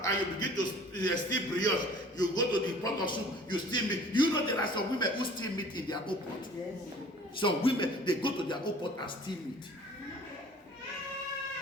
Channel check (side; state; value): both; normal; correlation 0.49